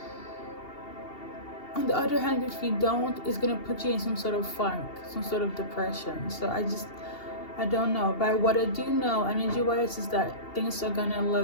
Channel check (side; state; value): right; late; 2.8 ms